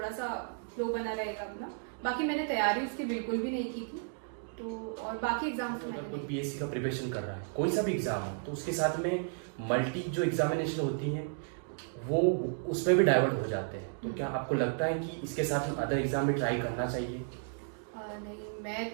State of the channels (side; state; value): left; silent; digital silence